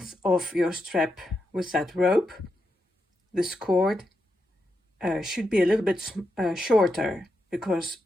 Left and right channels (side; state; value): both; normal; correlation 0.85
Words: of your strap with that rope, this cord should be a little bit shorter, because